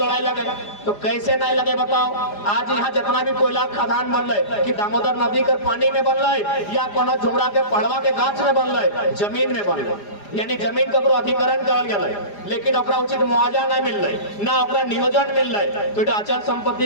लगे, तो कैसे नहीं लगे बताओ। आज यहाँ जितना भी कोयला खदान बन रहे कि दामोदर नदी के पानी में बन रहे या कोनो झुमरा के पढ़वा के गाछ में बन रहे, जमीन में बन रहे। यानी जमीन ककरो अधिकरण करल गेलै लेकिन ओकरा उचित मुआवजा नहीं मिल रही ना ओकरा नियोजन मिल रहा तो अचल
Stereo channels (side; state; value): right; late; 4.9 ms